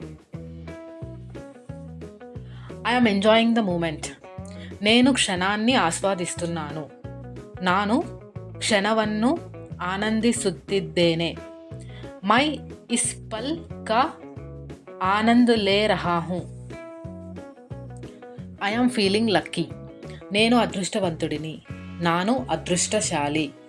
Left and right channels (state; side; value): identical; both; correlation 1.00